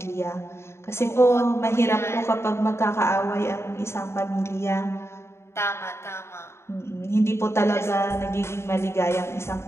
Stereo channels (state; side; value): late; right; 0.13 ms